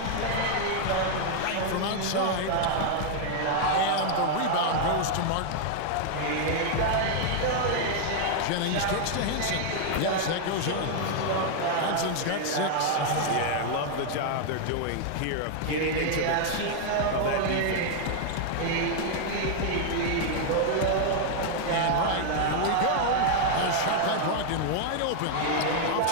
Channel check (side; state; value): both; different; correlation 0.00